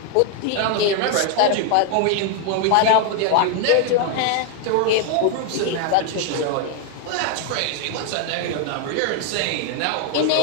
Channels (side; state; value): both; different; correlation 0.00